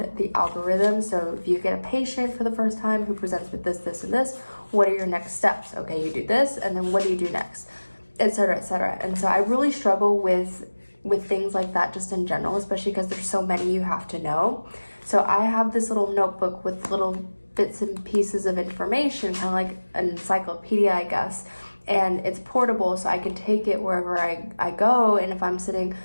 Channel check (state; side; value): inverted; both; correlation -1.00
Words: the algorithm. So if you get a patient for the first time who presents with this, this, and this, what are your next steps? Okay, you do this, and then what do you do next? Etc., etc. And so I really struggle with things like that just in general, especially because there's so many you have to know. So I have this little notebook with little bits and pieces of information, kind of like an encyclopedia, I guess. And it's portable, so I can take it wherever I go. And if I'm sitting,